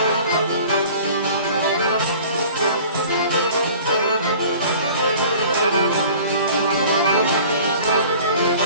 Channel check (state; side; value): inverted; both; correlation -0.46